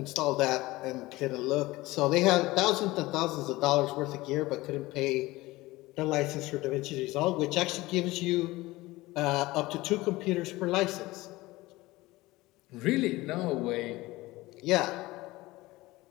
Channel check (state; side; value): quieter; right; 19.6 dB